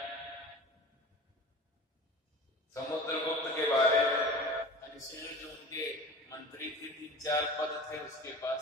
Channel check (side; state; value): both; normal; correlation 0.38